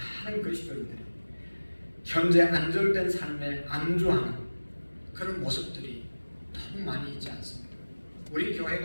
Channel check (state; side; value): inverted; both; correlation -1.00